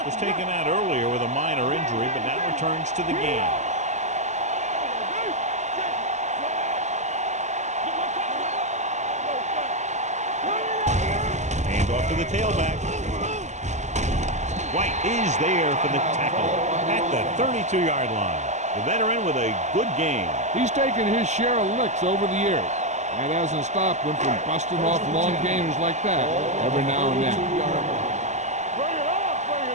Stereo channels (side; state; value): left; late; 0.34 ms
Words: was taken out earlier with a minor injury, but now returns to the game. Hand off to the tailback. White is there for the tackle at the 32-yard line. The veteran with a good game. He's taken his share of licks over the years. That hasn't stopped him from busting off long gainers like that every now and then.